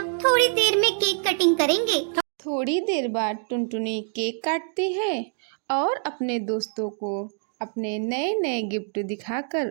थोड़ी देर में केक कटिंग करेंगे। थोड़ी देर बाद टुनटुनी केक काटती है और अपने दोस्तों को अपने नए नए गिफ्ट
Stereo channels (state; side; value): silent; left; 56 dB below the other